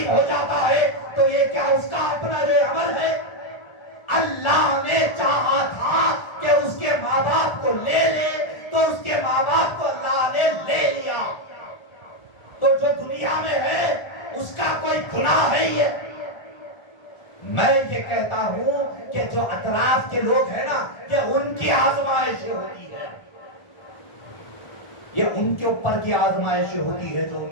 ہو جاتا ہے تو یہ کیا اس کا اپنا جو عمل ہے؟ اللہ نے چاہا تھا کہ اس کے ماں باپ کو لے لے تو اس کے ماں باپ کو اللہ نے لے لیا، تو جو دنیا میں ہے اس کا کوئی گناہ ہے یہ؟ میں یہ کہتا ہوں کہ جو اطراف کے لوگ ہیں نا، یہ ان کی آزمائش ہوتی ہے، یہ ان کے اوپر کی آزمائش ہوتی ہے جو ان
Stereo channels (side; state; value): right; late; 1.4 ms